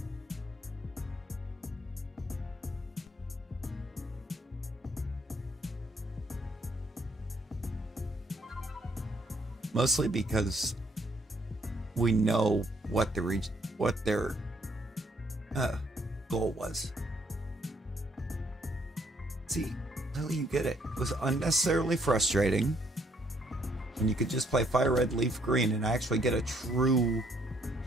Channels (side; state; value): both; normal; correlation 0.68